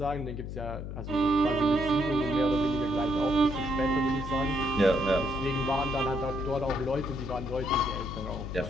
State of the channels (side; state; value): left; noise; hum, 7 dB below the sound